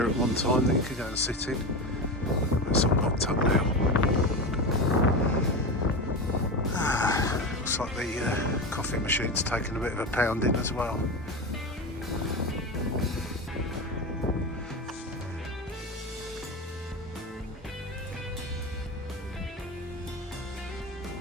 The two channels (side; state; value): both; normal; correlation 0.22